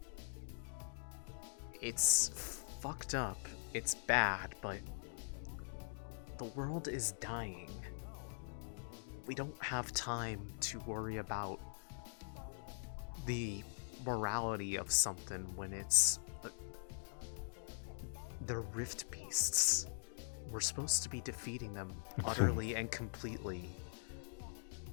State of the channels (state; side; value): silent; right; digital silence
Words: it's fucked up. It's bad, but the world is dying. We don't have time to worry about the morality of something when it's the Rift Beasts. We're supposed to be defeating them utterly and completely,